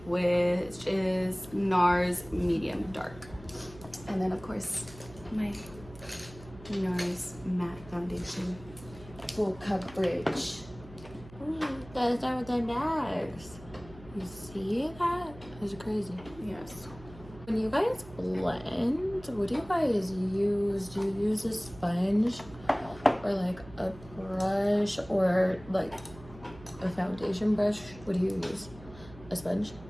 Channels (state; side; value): noise; right; hum, 19 dB below the sound